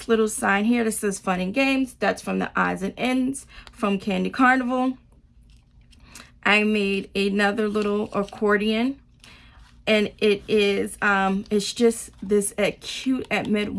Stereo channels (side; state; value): both; identical; correlation 1.00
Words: little sign here that says Fun and Games, that's from the odds and ends from Candy Carnival. I made another little accordion, and it is it's just this cute Admit